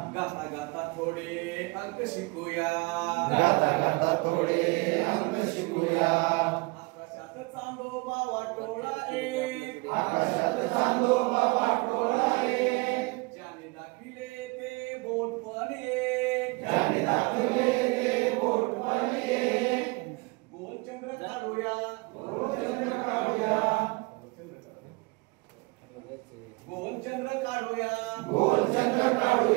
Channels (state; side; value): quieter; left; 26.8 dB